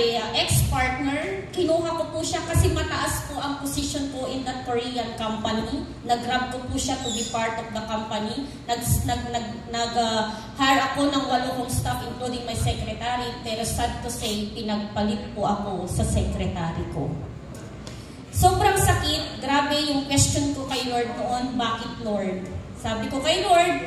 ex-partner, kinuha ko po siya kasi mataas po ang position ko in that Korean company. Nag-grab ko po siya to be part of the company. Nag-hire ako ng 8 kong staff including my secretary. Pero sad to say, pinagpalit po ako sa secretary ko. Sobrang sakit. Grabe yung question ko kay Lord noon. Bakit Lord? Sabi ko kay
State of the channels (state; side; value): identical; both; correlation 1.00